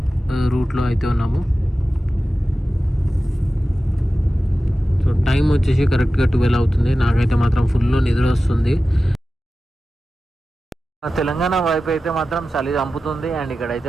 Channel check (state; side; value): normal; both; correlation 0.94